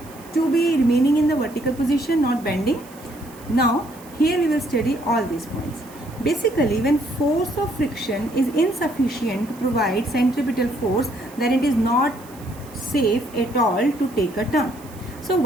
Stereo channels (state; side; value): noise; right; hiss, 22 dB below the sound